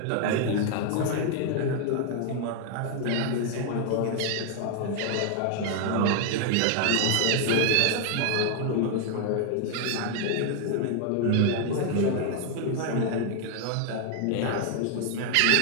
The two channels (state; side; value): different; both; correlation 0.00